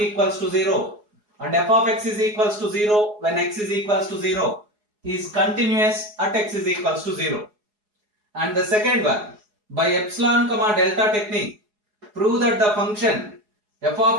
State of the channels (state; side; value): late; left; 4.8 ms